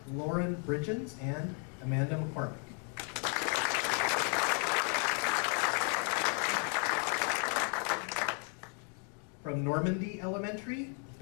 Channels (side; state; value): right; quieter; 38.5 dB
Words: Lauren Bridgens, and Amanda McCormick. From Normandy Elementary,